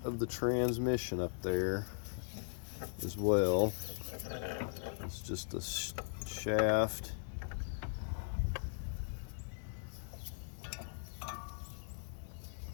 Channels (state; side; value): silent; right; digital silence